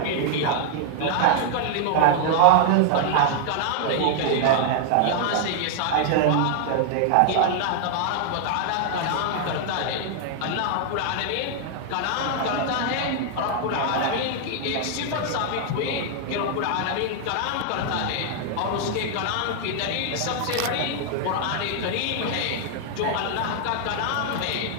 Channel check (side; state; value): both; different; correlation -0.01